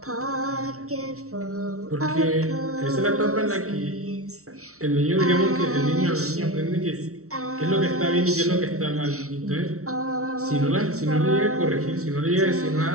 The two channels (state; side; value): late; left; 0.64 ms